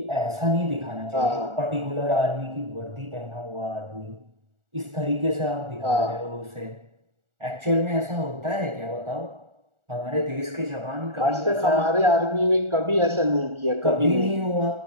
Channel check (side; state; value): left; late; 1.4 ms